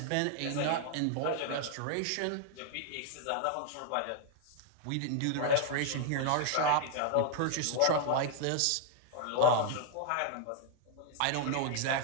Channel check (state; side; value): different; both; correlation 0.00